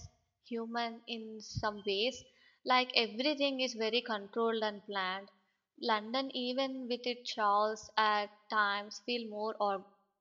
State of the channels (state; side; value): identical; both; correlation 1.00